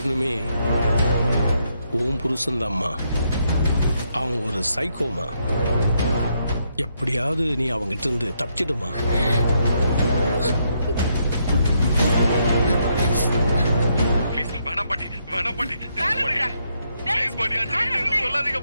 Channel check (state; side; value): inverted; both; correlation -0.76